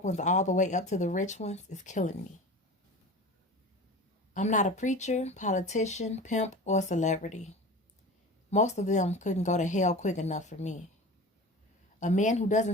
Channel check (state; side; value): normal; both; correlation 0.34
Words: ones all the way up to the rich ones, is killing me. I'm not a preacher, politician, pimp, or celebrity. Most of them couldn't go to hell quick enough for me. A man who